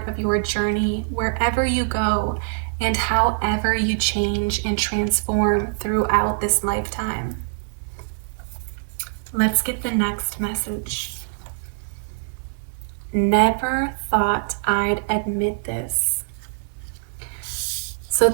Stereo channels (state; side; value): silent; left; digital silence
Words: of your journey wherever you go and however you change and transform throughout this lifetime. Let's get the next message. Never thought I'd admit this. So